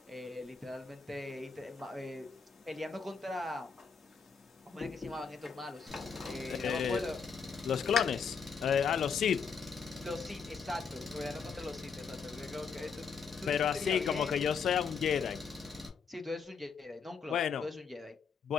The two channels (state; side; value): quieter; right; 5.9 dB